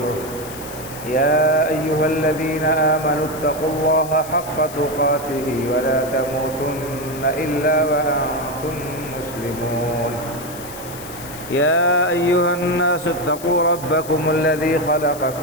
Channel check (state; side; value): noise; left; hiss, 14 dB below the sound